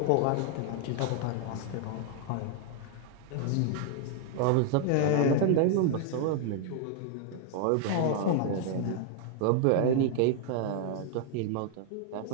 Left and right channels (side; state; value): both; different; correlation 0.00